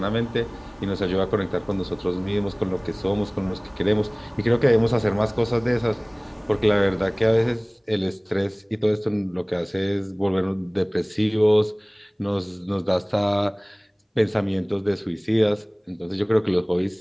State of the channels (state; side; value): identical; both; correlation 1.00